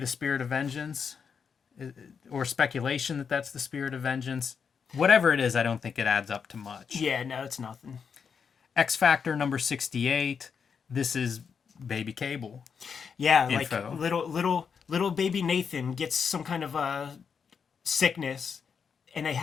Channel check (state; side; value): quieter; right; 6.4 dB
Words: Spirit of Vengeance, or speculation that that's the Spirit of Vengeance. Whatever it is, I don't think it adds up to much. Yeah, no, it's nothing. X Factor number 68. This is Baby Cable. Yeah, Info. like little baby Nathan gets some kind of a sickness, and they